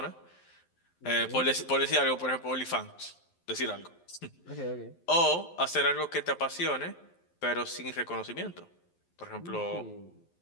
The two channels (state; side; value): late; right; 11 ms